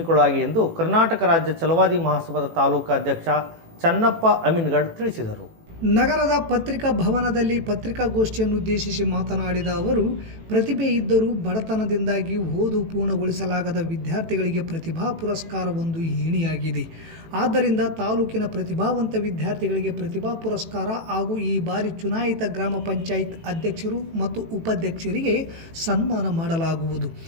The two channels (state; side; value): late; left; 18 ms